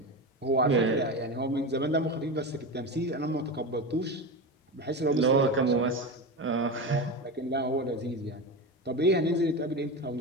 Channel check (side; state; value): both; normal; correlation 0.21